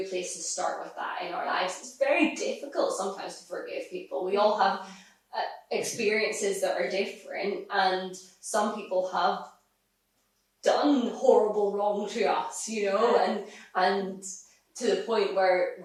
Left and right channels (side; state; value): both; identical; correlation 1.00